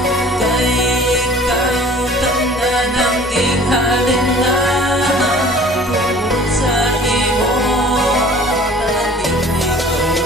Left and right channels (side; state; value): both; normal; correlation 0.48